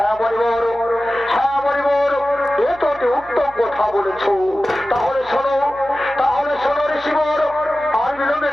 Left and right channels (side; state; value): left; noise; hum, 24 dB below the sound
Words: মরিবর, হ্যাঁ মরিবর, এ তো অতি উত্তম কথা বলেছ। তাহলে শোনো, তাহলে শোনো ঋষিবর, আর বিলম্বে